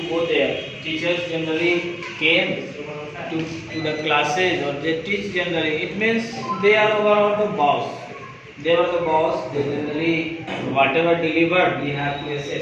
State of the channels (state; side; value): identical; both; correlation 1.00